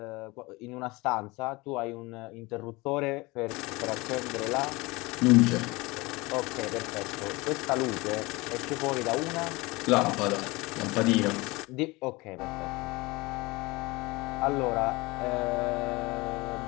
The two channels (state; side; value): quieter; right; 23.2 dB